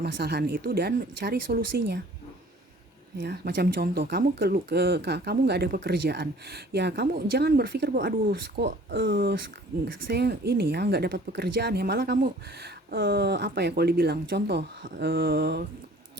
itu dan cari solusinya. Ya, macam contoh, kamu nggak ada pekerjaan, ya kamu jangan berpikir bahwa aduh kok saya ini ya nggak dapat pekerjaan ya, malah kamu apa ya, kalau dibilang contoh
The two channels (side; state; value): both; normal; correlation 0.51